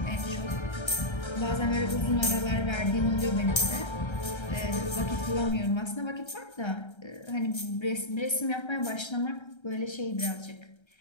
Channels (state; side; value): late; right; 1.3 ms